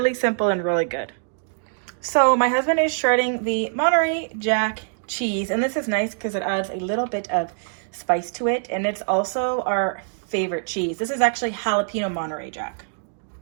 simple and really good. So my husband is shredding the Monterey Jack cheese, and this is nice because it adds a little bit of spice to it, and it's also our favorite cheese. This is actually jalapeno Monterey Jack.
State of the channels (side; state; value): left; silent; digital silence